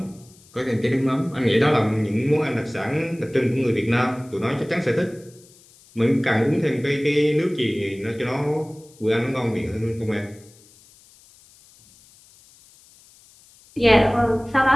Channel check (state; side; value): noise; left; hiss, 27 dB below the sound